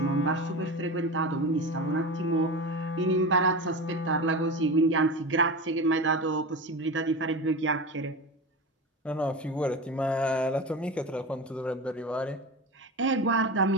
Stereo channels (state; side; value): normal; both; correlation 0.26